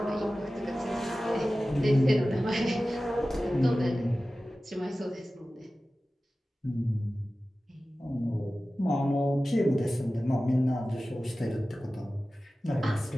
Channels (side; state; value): both; normal; correlation 0.96